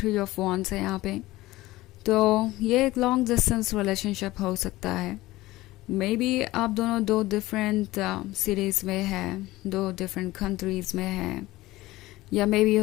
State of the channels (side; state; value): right; quieter; 18.1 dB